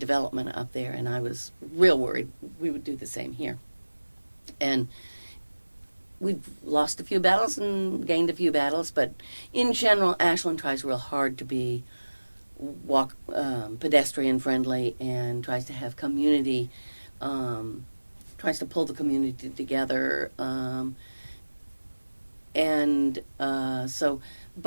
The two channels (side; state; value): both; inverted; correlation -1.00